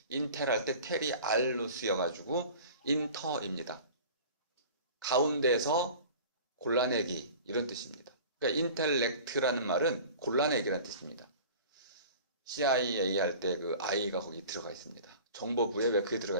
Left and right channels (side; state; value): both; inverted; correlation -0.41